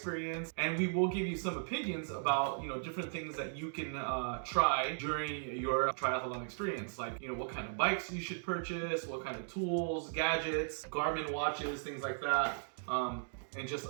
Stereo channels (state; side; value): silent; left; digital silence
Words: and we will give you some opinions about, different things that you can try during your triathlon experience. Like, what kind of bikes you should purchase, what kind of tools, gadgets, Garmin watches, things like that. And just